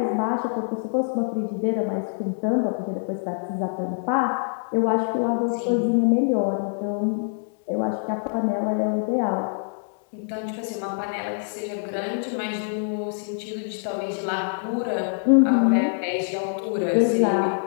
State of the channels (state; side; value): silent; right; digital silence